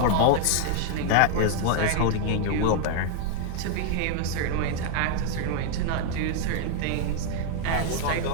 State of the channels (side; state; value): both; different; correlation 0.00